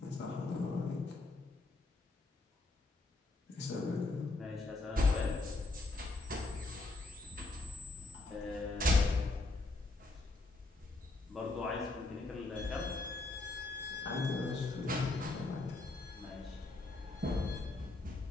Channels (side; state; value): right; quieter; 3.1 dB